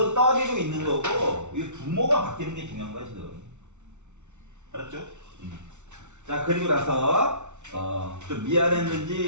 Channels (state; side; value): late; left; 0.83 ms